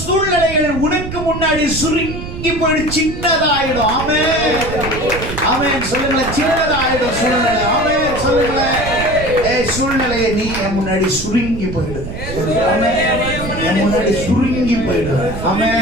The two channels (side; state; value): right; noise; rumble, 8 dB below the sound